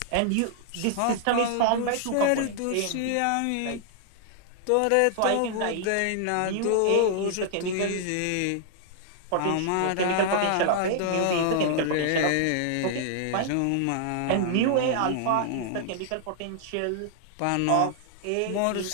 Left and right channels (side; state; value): both; different; correlation -0.01